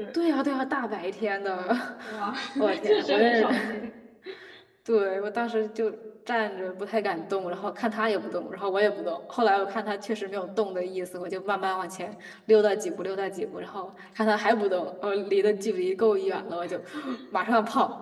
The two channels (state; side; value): identical; both; correlation 1.00